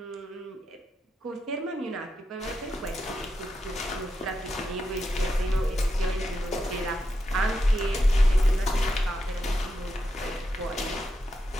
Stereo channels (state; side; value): normal; both; correlation 0.86